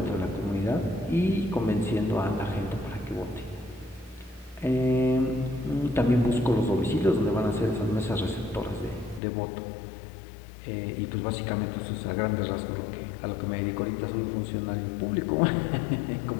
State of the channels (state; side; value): drops out; right; at 9.2 s